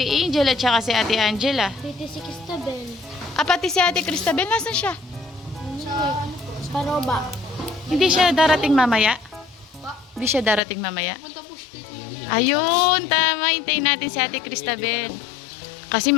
Angel at saka si Ate Angela. Pretty si Cristabel. Ah, pati si Ate Cristabel. Nasaan siya? Sa Paroba. Hindi siya darating mamaya? Hindi siya darating mamaya? Ayun, tama. Hintayin natin si Ate Cristabel. Kasi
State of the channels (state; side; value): drops out; right; at 10.6 s